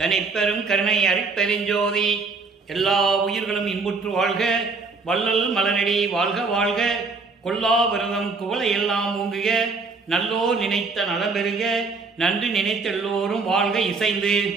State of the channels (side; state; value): left; quieter; 4.2 dB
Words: கருணை அருட்பெருஞ்சோதி. எல்லா உயிர்களும் இன்புற்று வாழ்க, வள்ளல் மலரடி வாழ்க வாழ்க, கொல்லா விரதம் குவளை எல்லாம் ஓங்குக, நல்லோ நினைத்த நலம்பெருக, நன்றி நினைத்த எல்லோரும் வாழ்க இசைந்து.